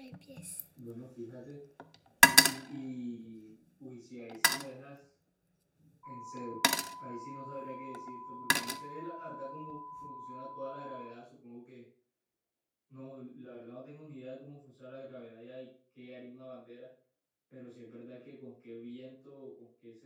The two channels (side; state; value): both; identical; correlation 1.00